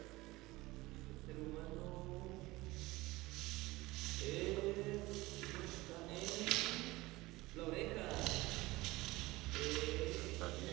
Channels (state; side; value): quieter; left; 20.0 dB